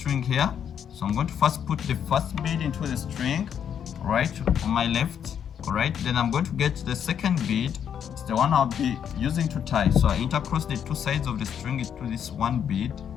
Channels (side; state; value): right; quieter; 8.5 dB